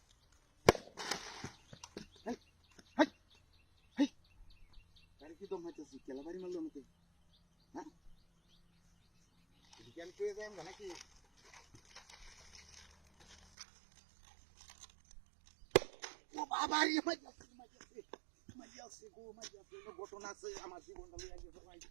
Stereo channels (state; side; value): drops out; left; at 13.5 s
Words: কি দম হইতেছি কেলাবাড়ি মারলো আমাকে হ্যাঁ জ্ঞান পেয়ে যায় আমরা নাকি ও বাবা মাইয়াছে ঘটনা আছে আমার জীবনটা লইয়া গেছে ভাই